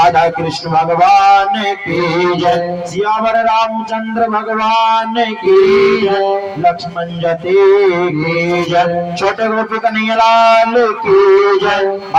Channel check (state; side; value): identical; both; correlation 1.00